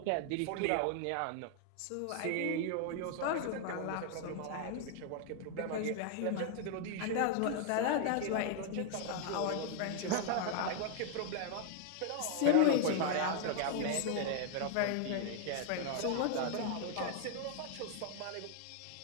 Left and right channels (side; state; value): both; different; correlation 0.00